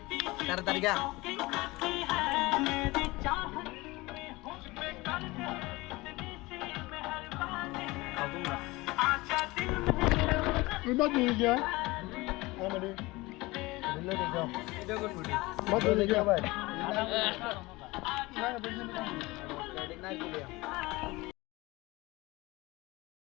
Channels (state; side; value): quieter; right; 21.7 dB